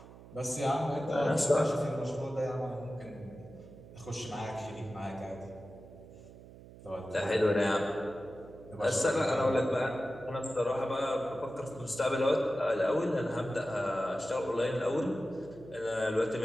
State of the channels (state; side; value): noise; right; hum, 18 dB below the sound